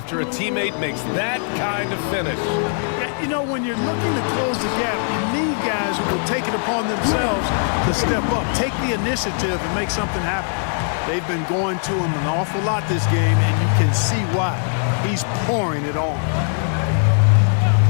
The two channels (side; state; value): right; silent; 65 dB below the other